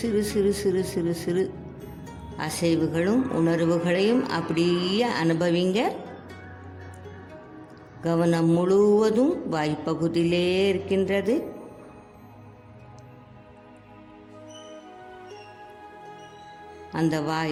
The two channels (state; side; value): identical; both; correlation 1.00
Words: சிறு சிறு சிறு சிறு அசைவுகளும் உணர்வுகளையும் அப்படியே அனுபவிங்க. கவனம் முழுவதும் வாய்ப்பகுதியிலே இருக்கின்றது. அந்த